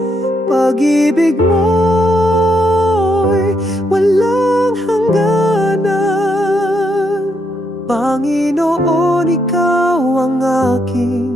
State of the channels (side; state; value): both; normal; correlation 0.77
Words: Pag-ibig mo'y walang hangganan. Panginoon, ikaw ang